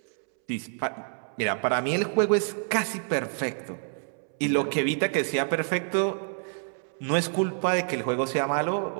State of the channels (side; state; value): left; silent; 60 dB below the other